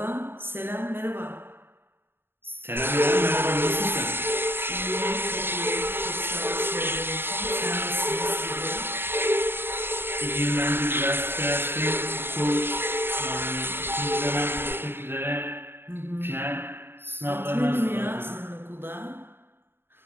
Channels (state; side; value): late; left; 0.11 ms